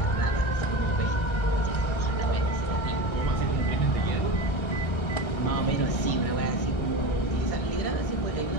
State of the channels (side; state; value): right; late; 1.6 ms